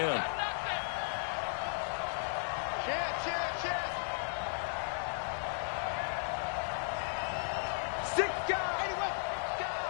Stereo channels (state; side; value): silent; right; digital silence